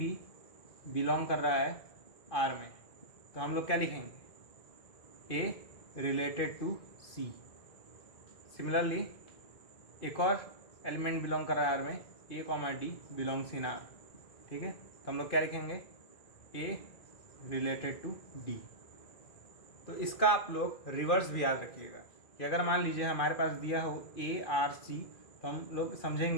बिलोंग कर रहा है R में, तो हम लोग क्या लिखेंगे, A related to C। Similarly एक और एलिमेंट बिलोंग कर रहा है R में, A, D belongs in R, ठीक है, तो हम लोग क्या लिखेंगे, A रिलेटेड टू D। तो इसका आप लोग रिवर्स भी याद रखिएगा कि अगर मान लीजिए हमारे पास दिया हो A, R, C, तो हम लोग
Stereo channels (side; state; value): right; late; 2.5 ms